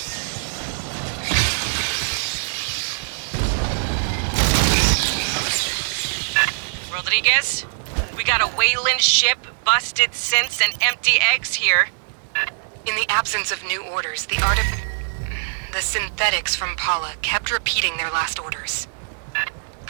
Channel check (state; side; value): silent; left; digital silence